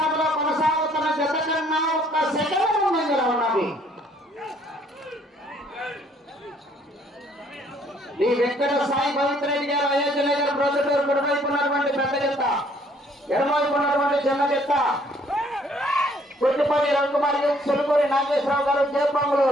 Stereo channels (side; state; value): both; normal; correlation 0.63